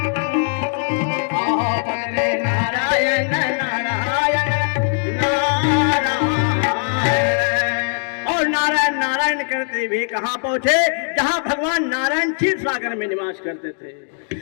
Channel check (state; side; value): silent; right; 60 dB below the other